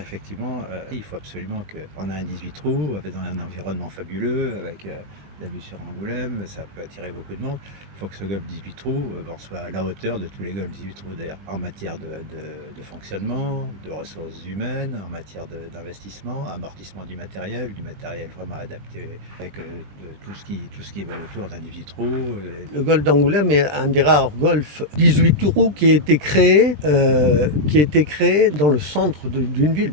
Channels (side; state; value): left; late; 20 ms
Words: il faut absolument qu'on ait un 18 trous dans un environnement fabuleux avec la vue sur Angoulême, ça peut attirer beaucoup de monde. Il faut que ce golf 18 trous soit à la hauteur de tous les golfs 18 trous d'air, en matière de fonctionnement, de ressources humaines, en matière d'investissement, amortissement du matériel vraiment adapté avec tout ce qui va autour d'un 18 trous. Le golf d'Angoulême est un des rares golfs 18 trous qui a été créé dans le centre d'une ville,